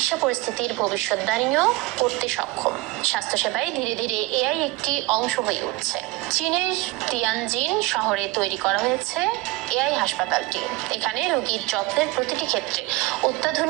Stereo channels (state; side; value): quieter; left; 21.2 dB